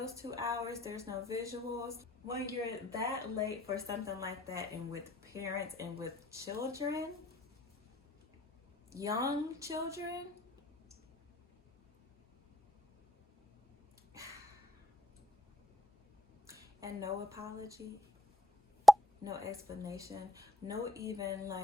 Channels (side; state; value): both; normal; correlation 0.68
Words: 2 hours. There's no visuals. When you're that late for something like that, and with parents and with children, young children, and no apology, no explanation, no even